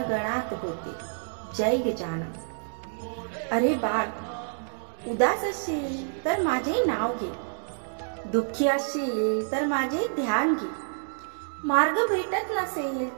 गणात होते जय गजानन। अरे बाळ, उदास असशील तर माझे नाव घे, दुःखी असशील तर माझे ध्यान घे, मार्ग भेटत नसेल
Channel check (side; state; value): left; silent; digital silence